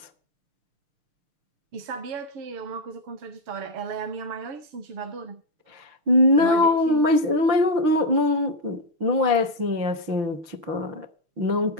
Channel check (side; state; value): left; late; 6.5 ms